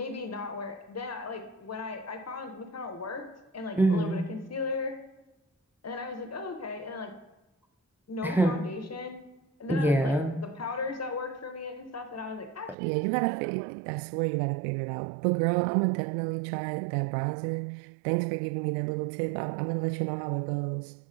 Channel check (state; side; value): drops out; left; at 12.8 s